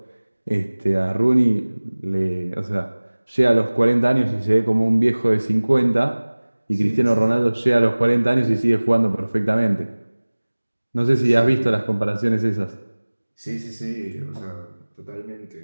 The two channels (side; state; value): both; inverted; correlation -1.00